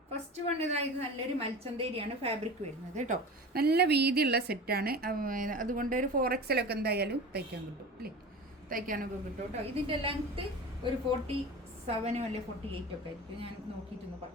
ഫസ്റ്റ് വൺ ഇതായത് നല്ലൊരു മൽച്ചന്തേരിയാണ് ഫാബ്രിക് വരുന്നത് കേട്ടോ. നല്ല വീതിയുള്ള സെറ്റാണ്, അതുകൊണ്ട് ഒരു 4XL ഒക്കെ എന്തായാലും തയ്ക്കാൻ കിട്ടും അല്ലേ, തയ്ക്കാനൊക്കെ കിട്ടും കേട്ടോ. ഇതിൻ്റെ ലെങ്ത്ത് ഒരു 47 അല്ലെ 48 ഒക്കെ ആയിരിക്കും. ഞാൻ നോക്കിയിട്ടൊന്ന്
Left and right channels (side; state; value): both; normal; correlation 0.34